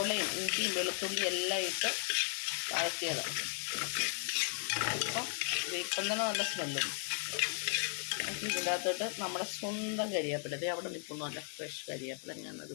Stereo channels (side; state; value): right; quieter; 37.8 dB